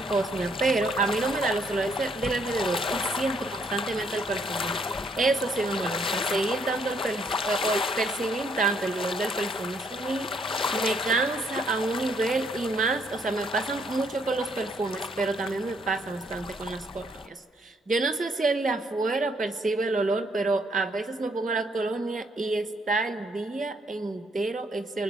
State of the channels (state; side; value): normal; both; correlation 0.69